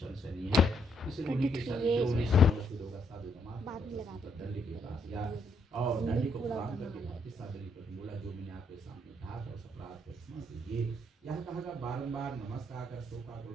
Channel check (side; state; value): both; normal; correlation 0.73